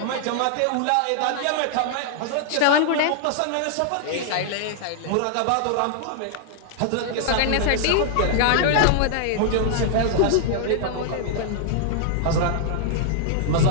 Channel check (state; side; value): different; both; correlation -0.01